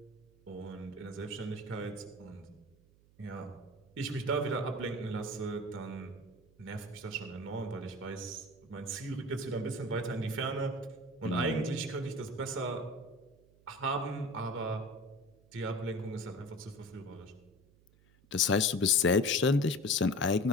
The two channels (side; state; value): right; noise; hum, 29 dB below the sound